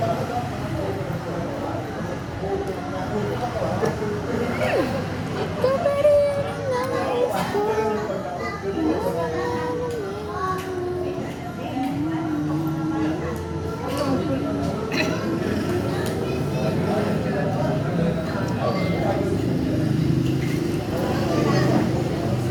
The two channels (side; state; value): both; identical; correlation 1.00